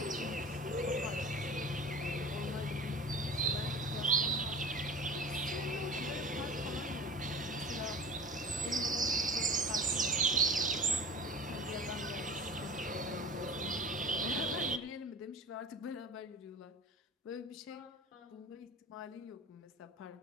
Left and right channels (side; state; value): both; normal; correlation 0.37